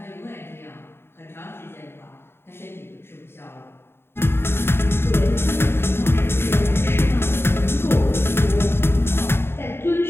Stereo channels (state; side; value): late; right; 0.11 ms